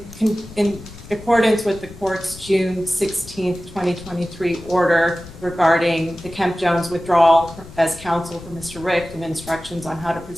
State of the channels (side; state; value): left; noise; rumble, 17 dB below the sound